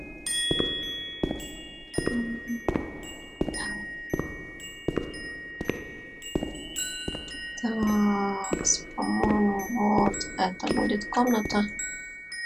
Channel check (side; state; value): both; identical; correlation 1.00